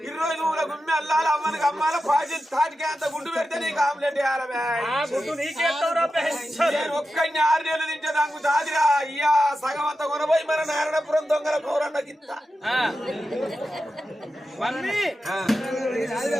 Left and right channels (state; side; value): normal; both; correlation 0.91